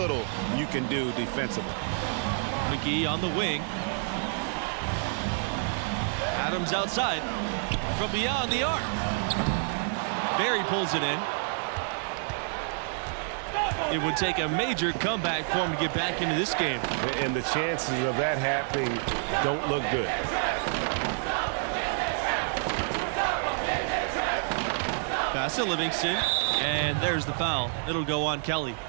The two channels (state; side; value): silent; left; 59 dB below the other